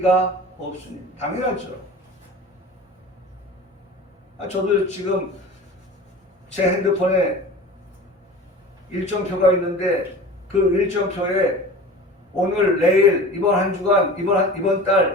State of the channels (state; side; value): normal; both; correlation 0.37